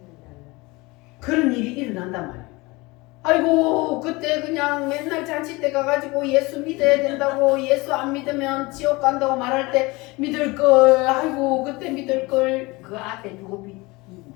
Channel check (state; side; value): quieter; right; 23.5 dB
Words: 그런 일이 일어난단 말이에요. 아이고 그때 그냥 맨날 잔치 때 가가지고 예수 믿어야 된다고, 예수 안 믿으면 지옥 간다고 말할 때 믿을걸, 아이고 그때 믿을걸. 그 앞에